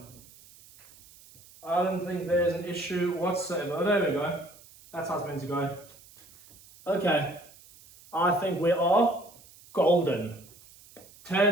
I don't think there's an issue whatsoever. Oh, there we go. That's how it's meant to go. Okay. I think we are golden.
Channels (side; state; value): right; noise; hiss, 23 dB below the sound